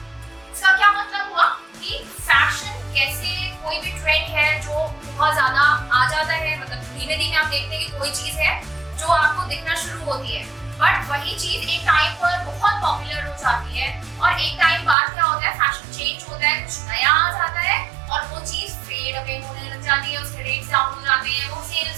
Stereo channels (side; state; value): left; drops out; at 15.0 s